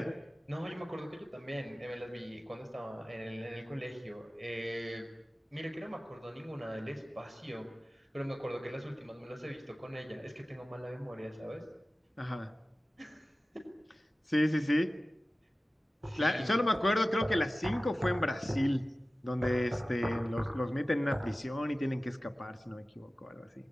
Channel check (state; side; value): normal; both; correlation 0.96